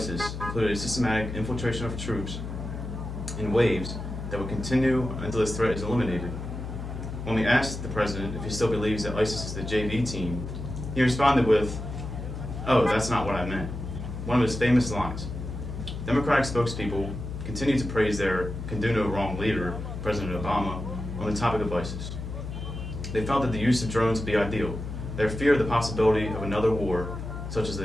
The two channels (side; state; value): left; noise; hum, 7 dB below the sound